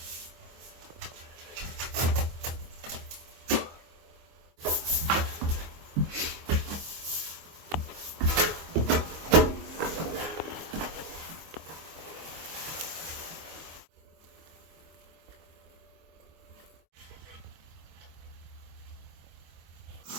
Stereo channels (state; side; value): late; left; 24 ms